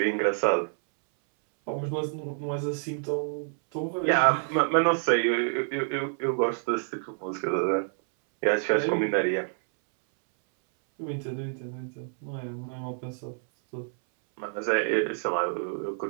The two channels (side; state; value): left; silent; 59 dB below the other